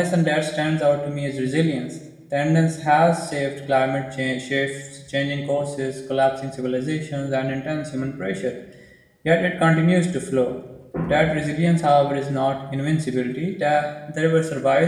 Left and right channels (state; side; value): identical; both; correlation 1.00